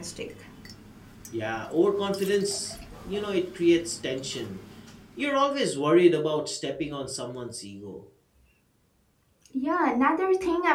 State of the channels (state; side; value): identical; both; correlation 1.00